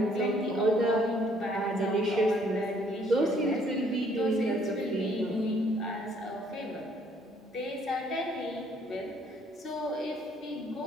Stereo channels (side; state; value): both; normal; correlation 0.64